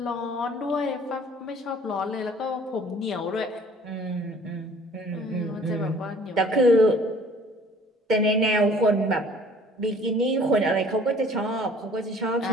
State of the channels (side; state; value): both; normal; correlation 0.53